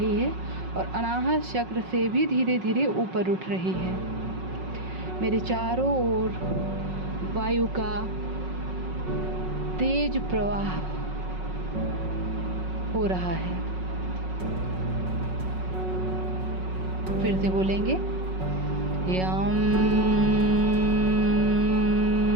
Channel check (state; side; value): late; left; 5.4 ms